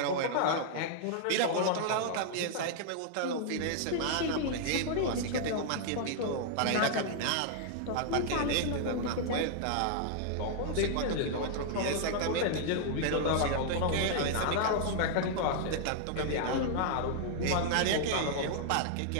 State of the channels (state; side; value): different; both; correlation -0.01